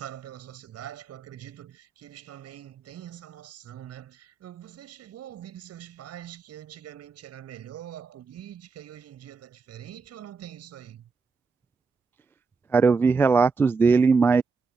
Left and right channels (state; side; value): quieter; left; 4.6 dB